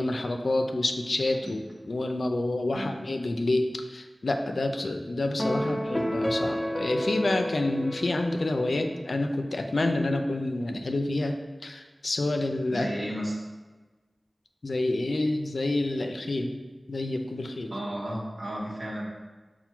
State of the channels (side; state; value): both; normal; correlation 0.97